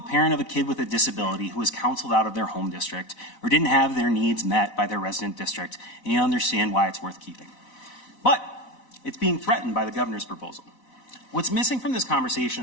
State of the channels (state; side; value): late; right; 4.0 ms